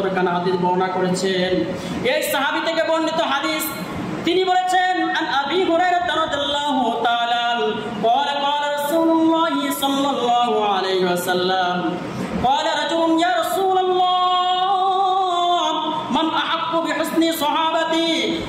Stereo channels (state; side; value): identical; both; correlation 1.00